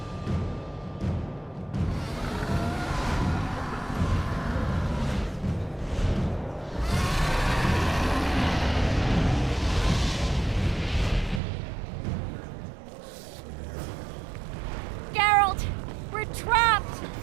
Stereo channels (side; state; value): left; drops out; at 11.4 s